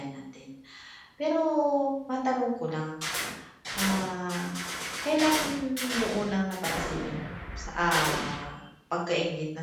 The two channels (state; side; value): identical; both; correlation 1.00